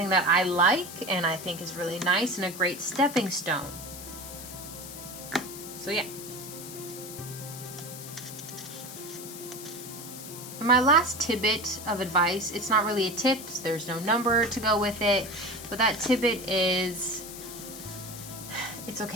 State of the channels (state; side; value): noise; left; hiss, 11 dB below the sound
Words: that I like and I think is really nice and a great stepping stone. So yeah. And my last tidbit of advice, it's not really a tip, there's no number to go with it, but that tidbit is, it's